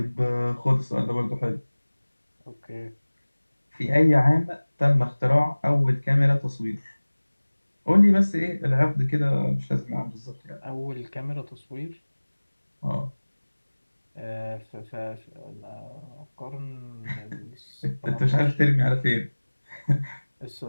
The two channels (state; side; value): inverted; both; correlation -1.00